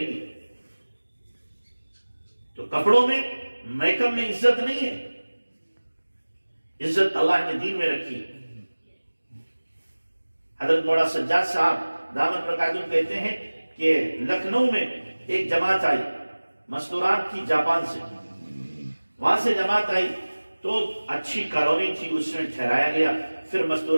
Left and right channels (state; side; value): inverted; both; correlation -1.00